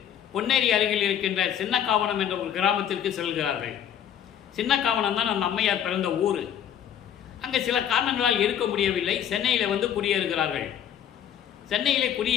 பொன்னேரி அருகில் இருக்கின்ற சின்னக்காவனம் என்ற ஒரு கிராமத்திற்கு செல்கிறார்கள். சின்னக்காவனம் தான் அந்த அம்மையார் பிறந்த ஊர். அங்கே சில காரணங்களால் இருக்க முடியவில்லை. சென்னையில் வந்து குடியேறுகிறார்கள். சென்னையிலே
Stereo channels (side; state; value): right; quieter; 9.7 dB